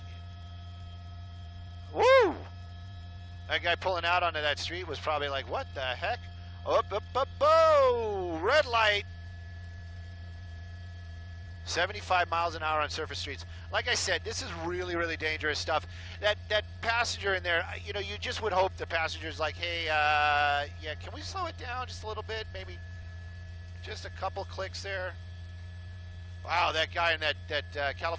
Woo! That guy pulling out onto that street was probably like, what the heck? Up, up, up, oh! Red light! 75 miles an hour on surface streets. Like I said, this is really dangerous stuff. That passenger in there, you know, you just would hope the passenger's like, hey, yeah, can we slow it down just a little bit? Maybe just a couple clicks there. Wow, that guy in that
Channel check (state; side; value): identical; both; correlation 1.00